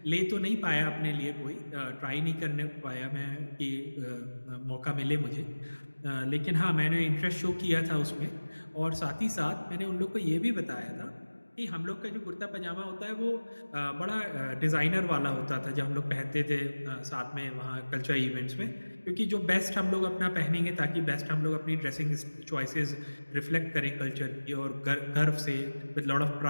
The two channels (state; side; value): inverted; both; correlation -1.00